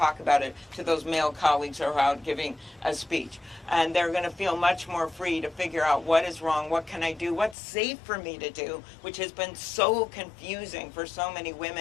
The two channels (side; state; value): right; drops out; at 7.6 s